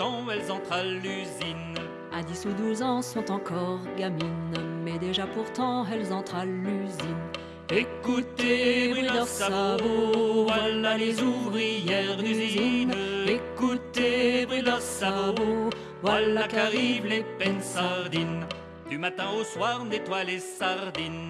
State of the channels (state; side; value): identical; both; correlation 1.00